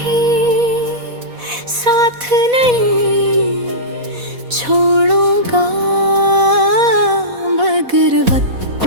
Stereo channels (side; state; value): left; late; 4.1 ms